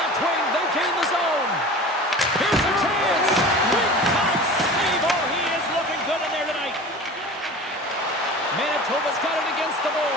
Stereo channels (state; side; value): normal; both; correlation 0.37